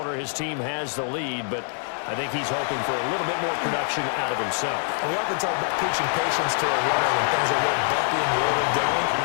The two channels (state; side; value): silent; right; 62 dB below the other